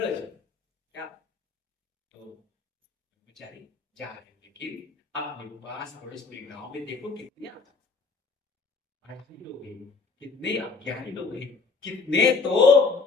क्या। तो बेचारी जा रहे हैं, लेकिन अपने पास पड़ोस में गांव में देखो कितने आदमी लोग हैं, कितने अज्ञानी लोग हैं, कितने तो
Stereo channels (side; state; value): right; quieter; 4.4 dB